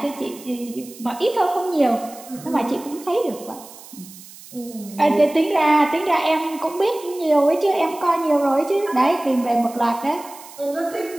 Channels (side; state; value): right; noise; hiss, 19 dB below the sound